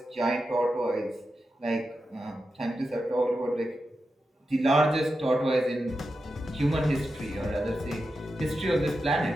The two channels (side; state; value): both; normal; correlation 0.89